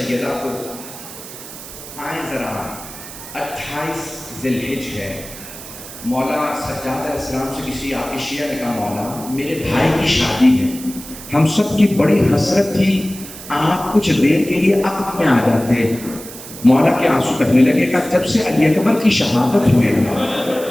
کو آئیں ذرا 28 ذی الحج ہے، مولا سجاد علیہ السلام سے کسی عائشہ نے کہا مولا میرے بھائی کی شادی ہے، ہم سب کی بڑی حسرت تھی، آپ کچھ دیر کے لیے عقد میں آ جاتے۔ مولا کے آنسو بہنے لگے، کہا جب سے علی اکبر کی شہادت ہوئے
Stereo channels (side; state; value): right; noise; hiss, 14 dB below the sound